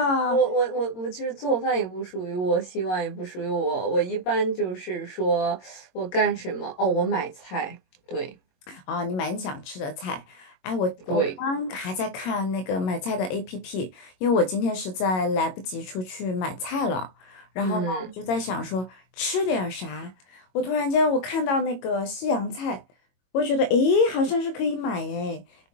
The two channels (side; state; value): right; late; 22 ms